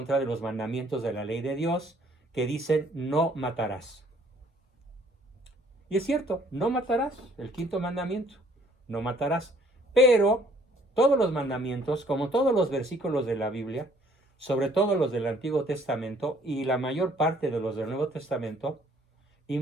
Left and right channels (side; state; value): both; normal; correlation 0.60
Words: de los mandamientos de la ley de Dios, que dicen no matarás. Y es cierto, no matarás, el quinto mandamiento, no matarás. Pero todos los mandamientos, como todos los versículos de la Biblia, sobre todo los del Antiguo Testamento y la mayor parte de los del Nuevo Testamento,